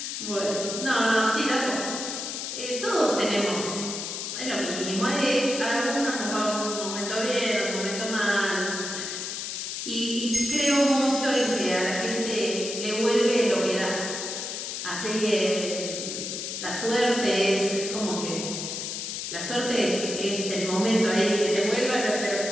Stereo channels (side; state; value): left; noise; hiss, 5 dB below the sound